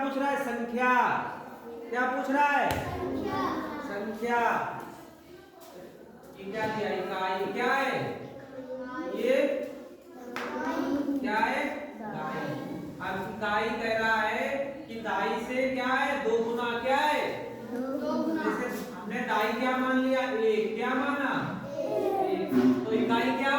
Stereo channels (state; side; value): identical; both; correlation 1.00